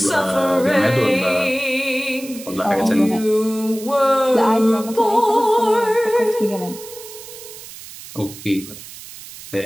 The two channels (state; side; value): noise; right; hiss, 15 dB below the sound